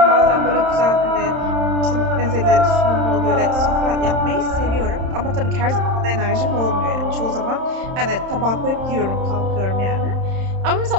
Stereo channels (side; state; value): left; late; 31 ms